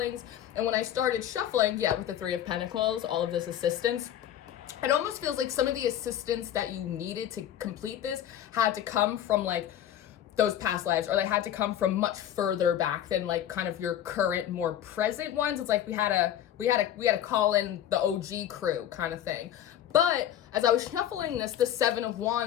And when I started shuffling, with the Three of Pentacles, all of this assistance, it almost feels like some of the assistance that you needed to complete this had to come from like those past lives, or they had to come from much further back than like kind of your current, more present ones. It's like we had to call in the OG crew kind of thing. But as I was shuffling this, the Seven of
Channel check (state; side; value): quieter; right; 11.1 dB